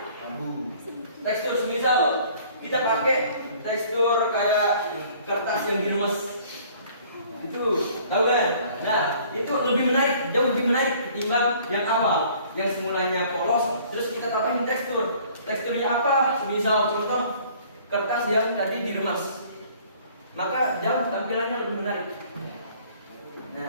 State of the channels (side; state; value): both; inverted; correlation -0.54